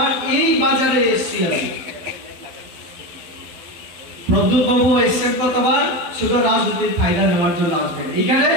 এই বাজারে এসেছি। আমি প্রদ্যুৎ বাবু এসেছেন কতবার, শুধু রাজনৈতিক ফায়দা নেওয়ার জন্য আসবেন। এইখানে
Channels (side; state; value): left; late; 12 ms